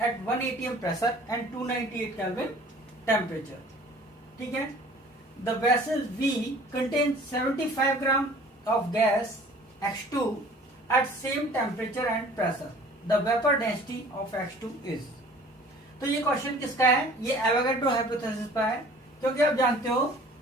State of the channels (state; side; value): normal; both; correlation 0.49